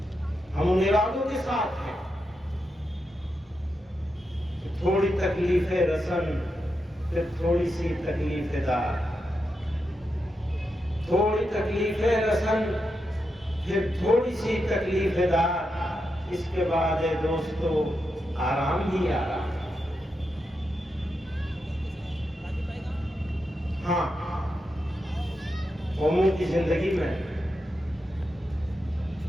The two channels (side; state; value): both; normal; correlation 0.86